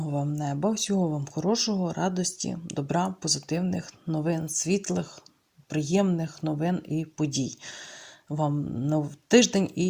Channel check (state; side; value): identical; both; correlation 1.00